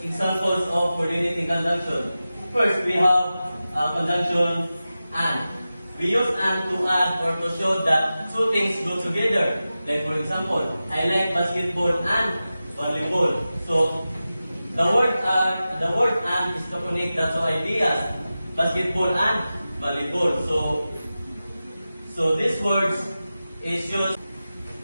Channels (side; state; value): both; inverted; correlation -0.94